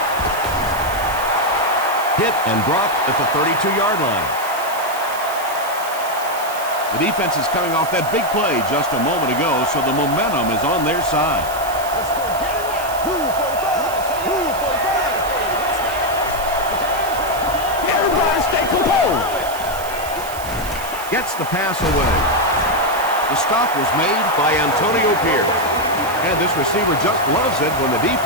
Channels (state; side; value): noise; right; hiss, 12 dB below the sound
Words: Hit and dropped at the 32-yard line. The defense is coming off that big play just a moment ago, so the momentum is on their side. Everybody stay composed. Gets the pass away. The stop was made By Antonio Pierce. And this receiver just loves it when the